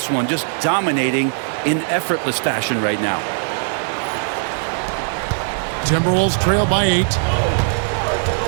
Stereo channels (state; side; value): silent; left; digital silence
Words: one, just dominating in effortless fashion right now. Timberwolves trail by 8.